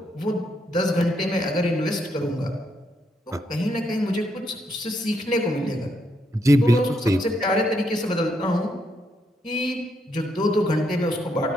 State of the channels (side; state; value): both; normal; correlation 0.77